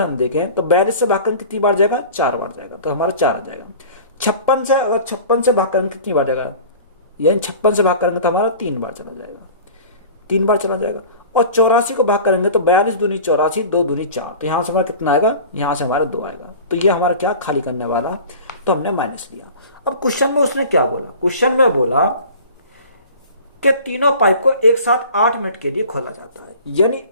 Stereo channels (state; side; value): inverted; both; correlation -0.41